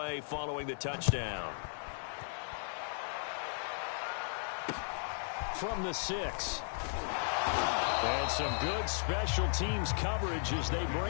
following the touchdown. From the 6. And some good special teams coverage as they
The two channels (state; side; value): silent; right; digital silence